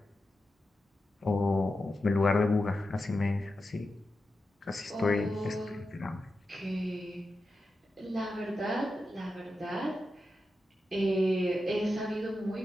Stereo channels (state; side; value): normal; both; correlation 0.90